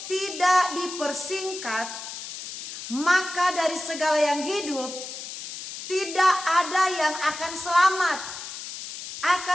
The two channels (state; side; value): noise; left; hiss, 10 dB below the sound